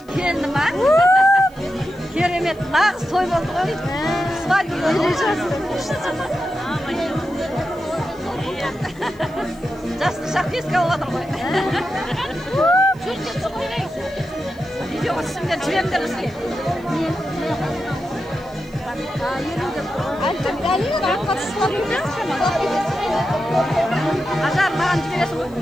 келдім а. Керемет, нағыз той болды ғой. Свадьба жасты шақ еске алып отыр ғой. Видеоға түсіңдер жіберіңдер бізге. Ажар, маған жібересің ғой?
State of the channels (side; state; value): left; noise; hiss, 30 dB below the sound